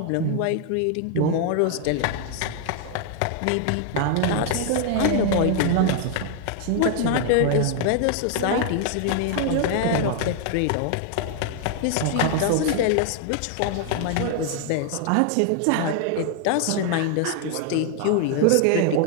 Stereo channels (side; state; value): both; different; correlation 0.00